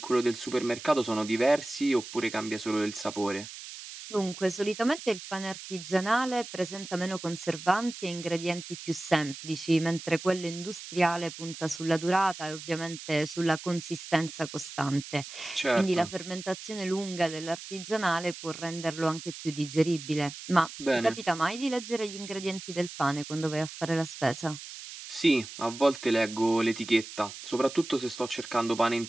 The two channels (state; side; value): noise; right; hiss, 12 dB below the sound